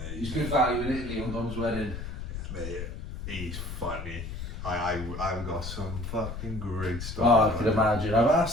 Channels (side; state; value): left; noise; rumble, 7 dB below the sound